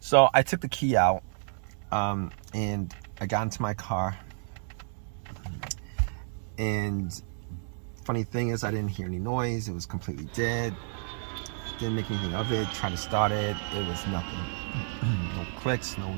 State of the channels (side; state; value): left; silent; digital silence